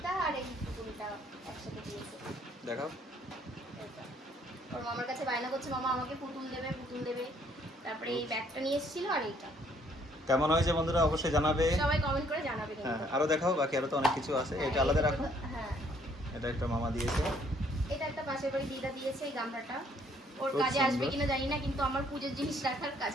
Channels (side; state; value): both; normal; correlation 0.65